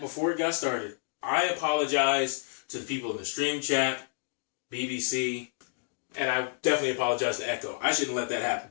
before it got started. I apologize to the people in the stream chat, BBC, and I definitely apologize to Echo. I shouldn't let that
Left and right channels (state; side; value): silent; right; digital silence